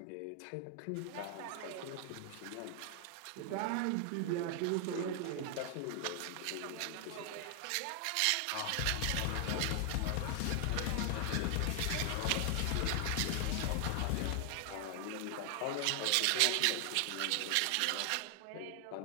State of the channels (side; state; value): both; different; correlation 0.00